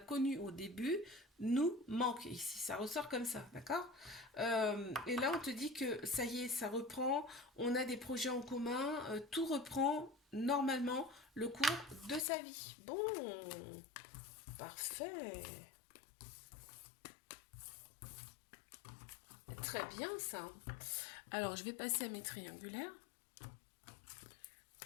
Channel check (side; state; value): right; drops out; at 12.2 s